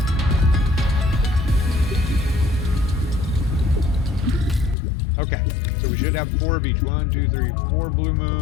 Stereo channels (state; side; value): drops out; right; at 4.8 s